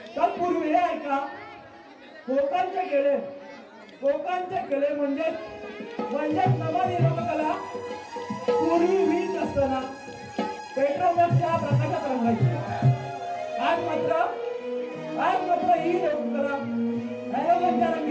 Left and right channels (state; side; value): identical; both; correlation 1.00